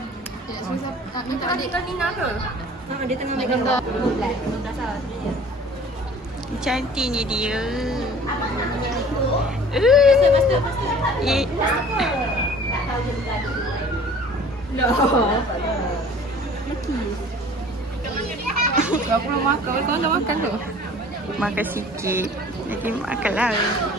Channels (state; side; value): normal; both; correlation 0.48